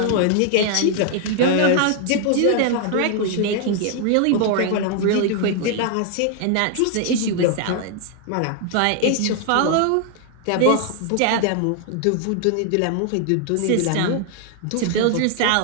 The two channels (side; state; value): both; different; correlation 0.00